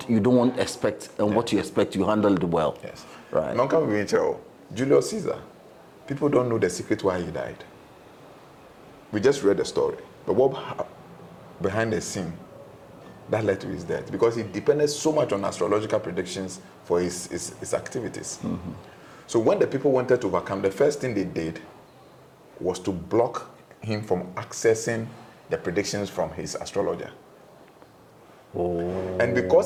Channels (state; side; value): identical; both; correlation 1.00